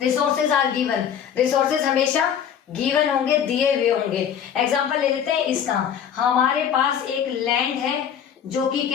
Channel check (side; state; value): right; quieter; 8.6 dB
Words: आर गिवन, रिसोर्सेज हमेशा गिवन होंगे, दिए हुए होंगे। एग्जाम्पल ले लेते हैं इसका, हमारे पास एक लैंड है जो कि